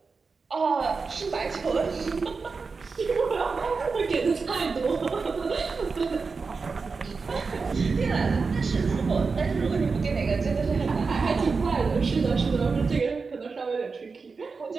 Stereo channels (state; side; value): quieter; left; 4.7 dB